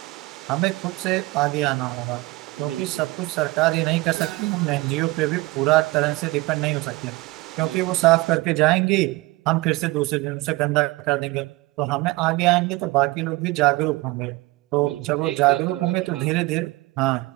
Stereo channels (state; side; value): quieter; left; 21.4 dB